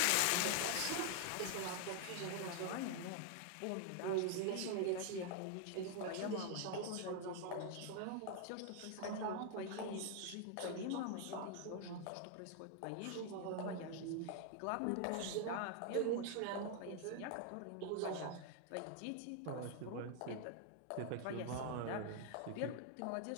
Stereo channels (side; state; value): both; different; correlation 0.00